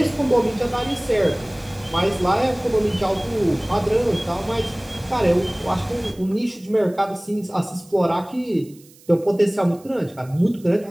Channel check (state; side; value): noise; right; hiss, 26 dB below the sound